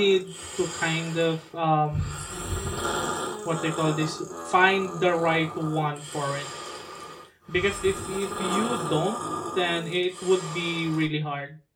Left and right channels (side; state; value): both; identical; correlation 1.00